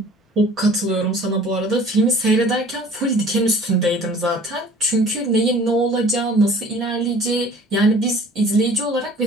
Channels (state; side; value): normal; both; correlation 0.49